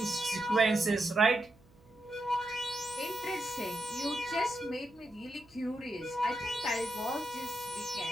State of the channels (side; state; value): right; noise; hum, 27 dB below the sound